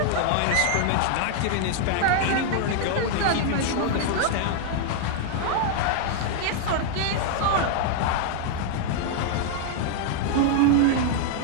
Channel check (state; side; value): different; both; correlation -0.01